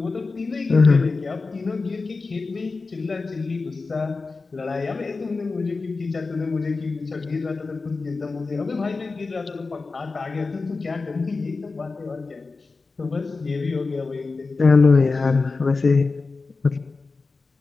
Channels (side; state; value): right; quieter; 4.0 dB